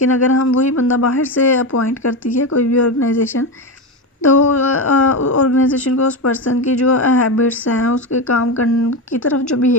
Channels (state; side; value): normal; both; correlation 0.16